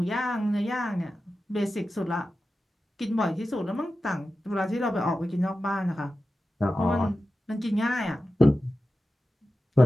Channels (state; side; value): normal; both; correlation 0.93